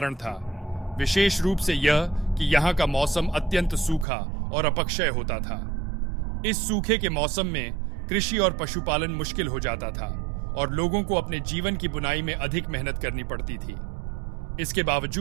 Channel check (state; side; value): drops out; left; at 4.0 s